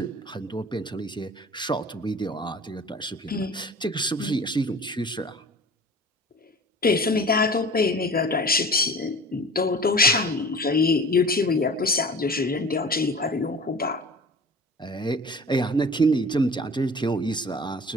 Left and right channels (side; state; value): both; normal; correlation 0.41